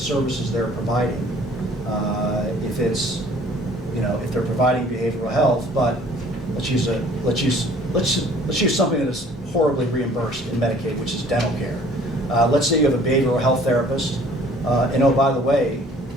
they're providing, if they're providing behavioral health, but let's use something that is horribly reimbursed in Medicaid, which is dental care. Let's say you have a behavioral health therapist, and oh, by the way,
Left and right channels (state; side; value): normal; both; correlation 0.54